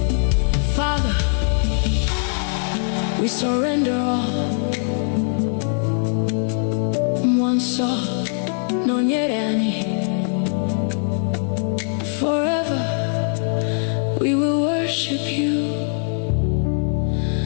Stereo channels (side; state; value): right; silent; 60 dB below the other